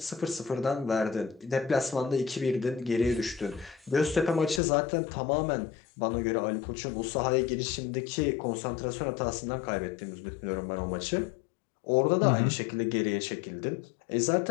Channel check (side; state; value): right; drops out; at 4.6 s